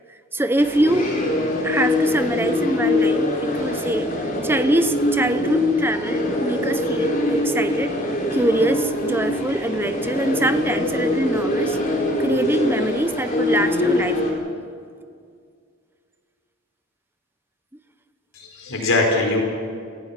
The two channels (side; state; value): both; normal; correlation 0.57